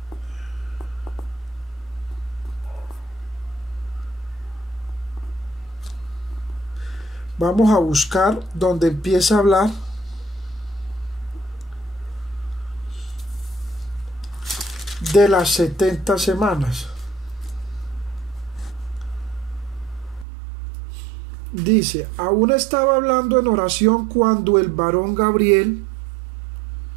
vamos a buscar donde empieza a hablar de las 70 semanas. Dice, aún estaba hablando en oración cuando el varón Gabriel,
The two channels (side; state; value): left; drops out; at 20.2 s